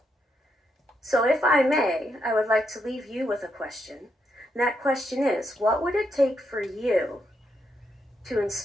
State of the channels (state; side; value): normal; both; correlation 0.80